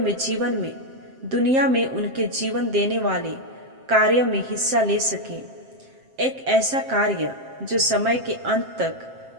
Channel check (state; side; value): late; left; 7.6 ms